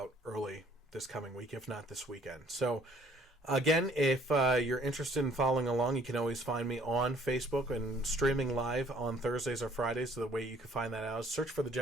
early this coming week, if not this weekend. So. Again, if you're interested in following along, you can always find me on Facebook and streaming live on Thursdays or Fridays. So the way you can find that out is search for the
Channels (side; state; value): both; normal; correlation 0.60